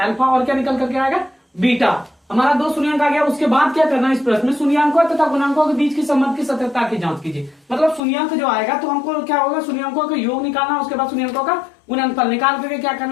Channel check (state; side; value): drops out; right; at 8.0 s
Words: और क्या निकल करके आएगा, बीटा। हमारा 2 शून्यंक आ गया। उसके बाद क्या करना है, इस प्रश्न में शून्यंकों तथा गुणांकों के बीच के संबंध की सत्यता की जांच कीजिए। मतलब शून्यंक जो आएगा तो हमको क्या होगा, शून्यंकों का योग निकालना, उसके बाद शून्यंकों का गुणनफल निकाल करके क्या